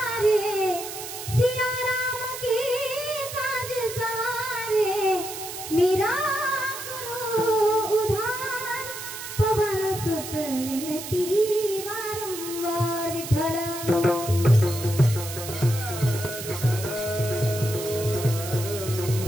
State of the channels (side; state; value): right; noise; hiss, 9 dB below the sound